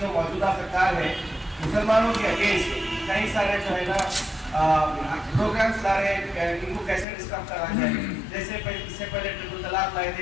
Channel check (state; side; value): drops out; right; at 7.1 s